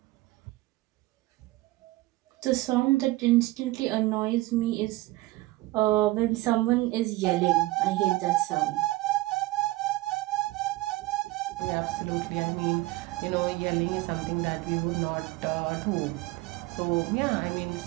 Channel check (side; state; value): left; quieter; 19.5 dB